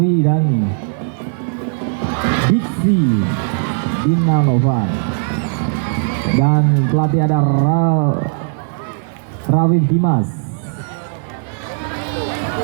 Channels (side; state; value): left; silent; 68 dB below the other